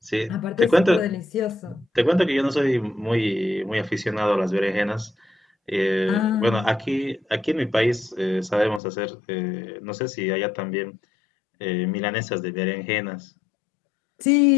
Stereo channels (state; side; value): drops out; right; at 8.8 s